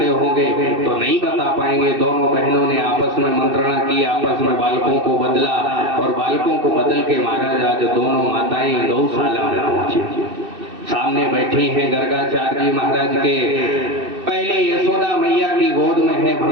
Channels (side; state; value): left; late; 2.6 ms